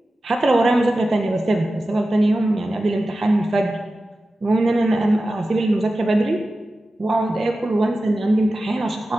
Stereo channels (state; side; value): normal; both; correlation 0.94